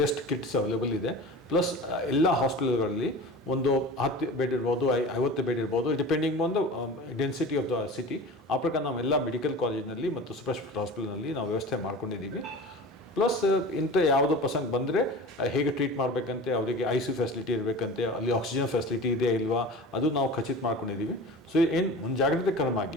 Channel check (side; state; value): both; normal; correlation 0.35